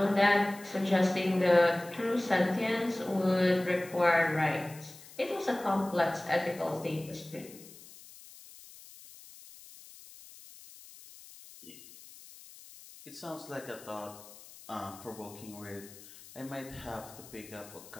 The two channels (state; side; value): noise; left; hiss, 19 dB below the sound